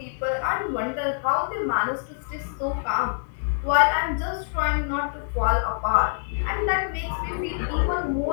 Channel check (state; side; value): silent; right; 57 dB below the other